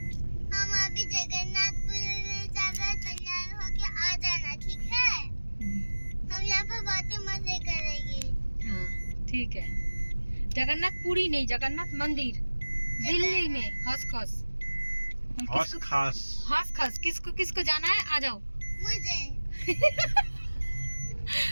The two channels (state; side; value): inverted; both; correlation -1.00